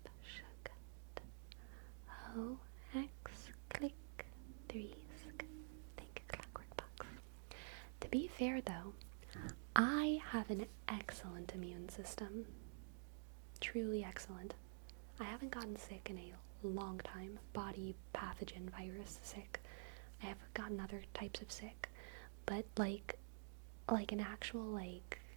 sh O X click 3 sk. Think Clockwork Box. To be fair though, I have an excellent immune system. Truly excellent. I haven't gotten sick in a long time. Body pathogen virus sick. I have gotten other types of sick. But like an actual like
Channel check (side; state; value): left; silent; digital silence